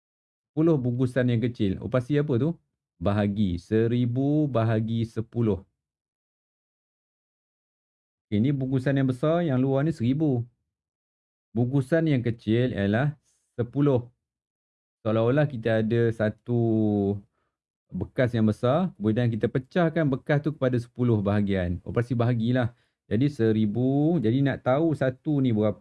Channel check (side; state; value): both; identical; correlation 1.00